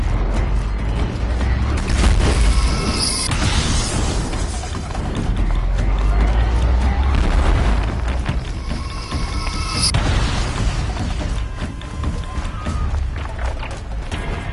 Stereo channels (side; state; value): both; identical; correlation 1.00